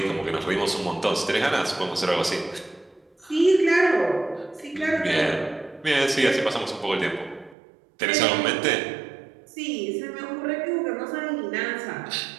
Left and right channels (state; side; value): drops out; left; at 7.6 s